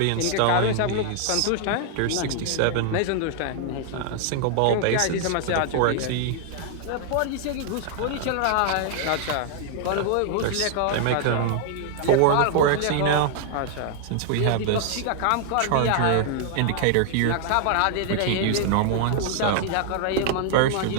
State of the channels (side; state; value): both; different; correlation 0.00